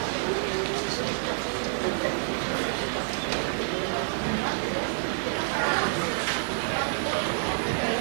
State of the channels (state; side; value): silent; left; digital silence